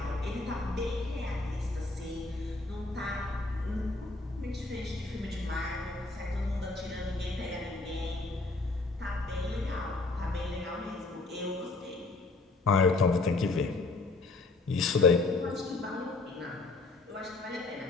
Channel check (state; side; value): quieter; right; 3.4 dB